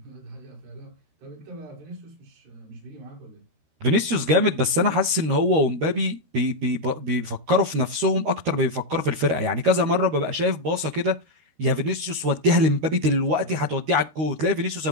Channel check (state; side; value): late; left; 13 ms